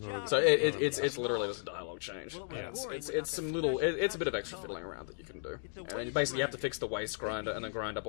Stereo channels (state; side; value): silent; right; 55 dB below the other